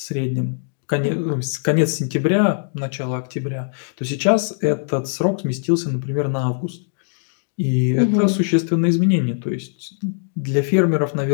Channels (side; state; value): right; silent; digital silence